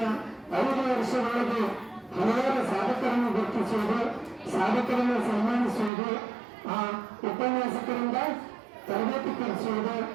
5 ವರ್ಷದೊಳಗೆ ಹಲವಾರು ಸಾಧಕರನ್ನು ಗುರುತಿಸುವುದು, ಸಾಧಕರನ್ನು ಸನ್ಮಾನಿಸುವುದು, ಉಪನ್ಯಾಸಕರಿಂದ ತರಬೇತಿ ಕಲಿಸುವುದು,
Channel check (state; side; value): drops out; left; at 5.9 s